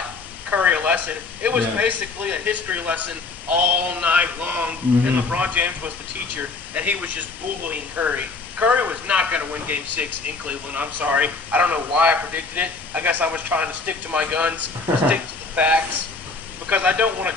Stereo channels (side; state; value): right; quieter; 4.0 dB